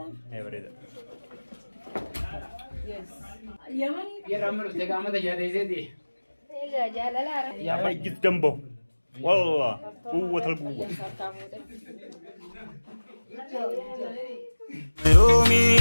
what is it? Yes. Yaman. يا رامل تجامد جالي زيدي. إيه جال لا. يا أخي جد جنبه والله قوة القوة.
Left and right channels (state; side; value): inverted; both; correlation -1.00